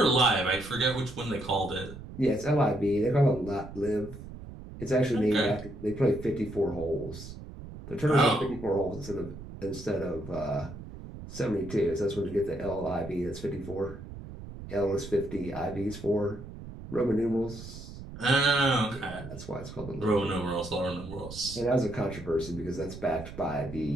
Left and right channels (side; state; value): right; noise; rumble, 13 dB below the sound